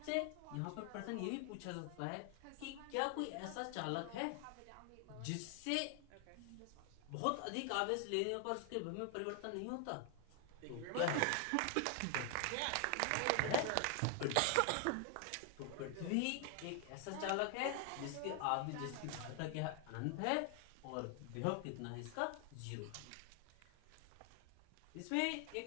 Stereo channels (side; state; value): both; different; correlation 0.00